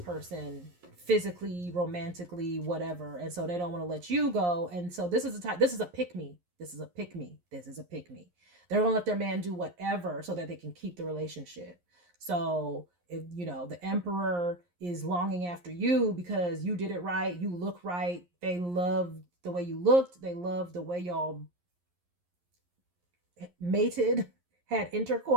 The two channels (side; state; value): left; late; 11 ms